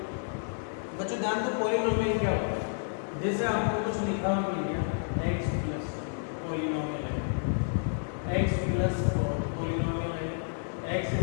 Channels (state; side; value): silent; right; 58 dB below the other